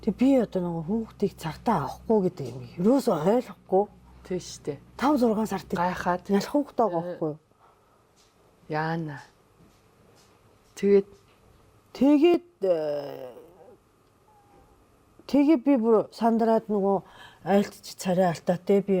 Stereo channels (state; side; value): identical; both; correlation 1.00